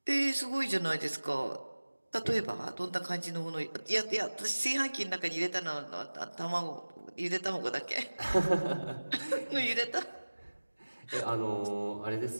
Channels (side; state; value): both; inverted; correlation -1.00